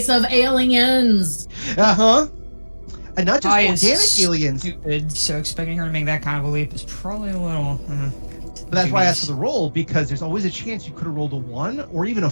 of aliens. Uh-huh. And not just I organic aliens. Stupid, so expecting her to make that kind of a leap is probably a little... But that's why I asked for the roll, because there's always a chance you could have rolled a 1 or even a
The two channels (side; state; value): both; inverted; correlation -1.00